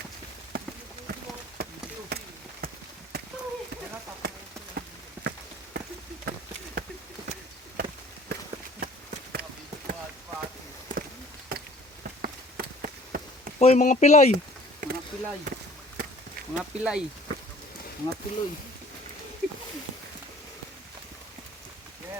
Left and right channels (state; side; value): normal; both; correlation 0.51